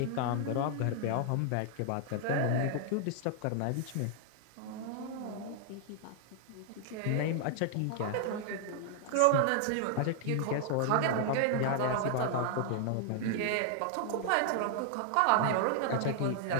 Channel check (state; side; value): different; both; correlation 0.00